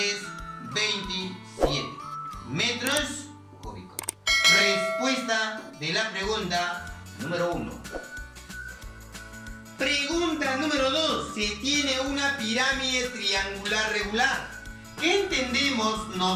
27 metros cúbicos. Respuesta de la pregunta número 1. Pregunta número 2. Se tiene una pirámide triangular regular. ¿Qué entendemos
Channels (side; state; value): both; identical; correlation 1.00